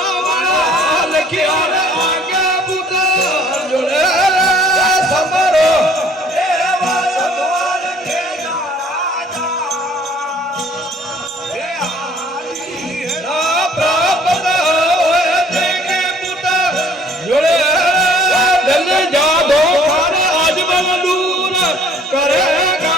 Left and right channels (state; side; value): normal; both; correlation 0.57